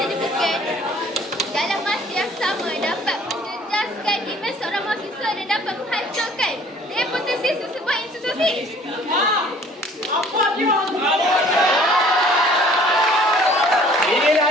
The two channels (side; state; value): both; normal; correlation 0.54